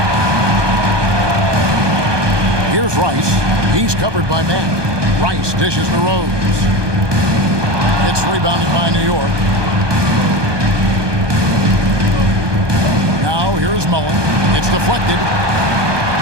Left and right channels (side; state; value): left; late; 1.2 ms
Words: Here's Rice. He's covered by Mack. Rice dishes to Rose. It's rebounded by New York. Now here's Mullen. It's deflected.